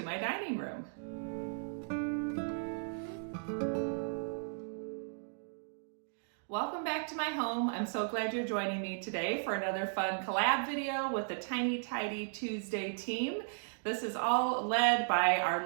my dining room. Welcome back to my home. I'm so glad you're joining me today for another fun collab video with the Tiny Tidy Tuesday team. This is all led by our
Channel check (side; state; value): left; silent; digital silence